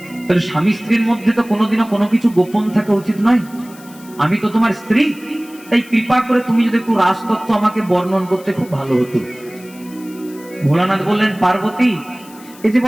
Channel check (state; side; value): noise; left; hiss, 22 dB below the sound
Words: তাহলে স্বামী স্ত্রীর মধ্যে তো কোনোদিনও কোনো কিছু গোপন থাকা উচিত নয়। আমি তো তোমার স্ত্রী, তাই কৃপা করে তুমি যদি একটু রাসতত্ত্ব আমাকে বর্ণন করতে খুব ভালো হতো। ভোলানাথ বললেন, পার্বতী এই যে